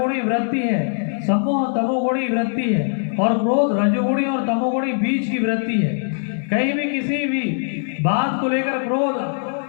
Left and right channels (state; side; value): silent; right; 61 dB below the other